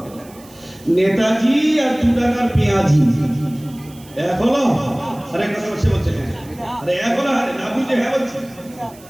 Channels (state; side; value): noise; right; hiss, 23 dB below the sound